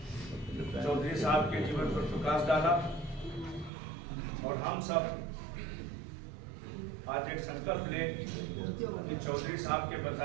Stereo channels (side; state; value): left; drops out; at 3.7 s